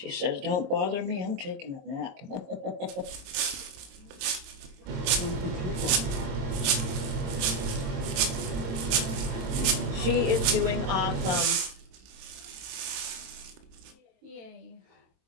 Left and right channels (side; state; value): left; late; 22 ms